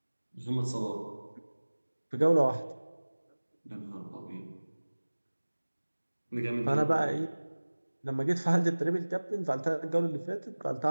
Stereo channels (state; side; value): inverted; both; correlation -1.00